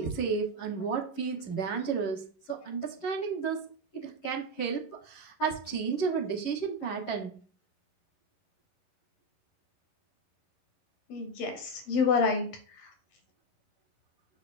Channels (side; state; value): right; late; 11 ms